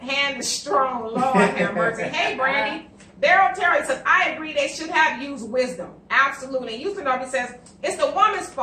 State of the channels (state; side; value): identical; both; correlation 1.00